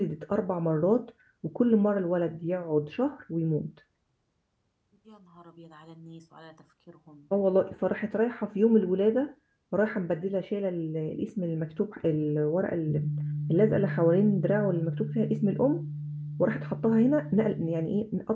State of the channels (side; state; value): both; identical; correlation 1.00